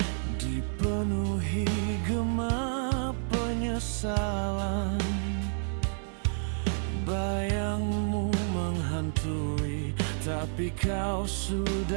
dipenuhi gema penyesalan. Bayangmu menghantui, tapi kau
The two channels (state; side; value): silent; left; 58 dB below the other